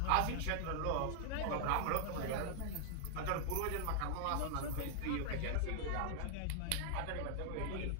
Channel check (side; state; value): both; different; correlation 0.00